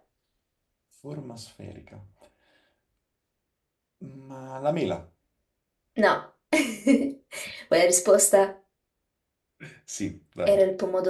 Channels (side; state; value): both; identical; correlation 1.00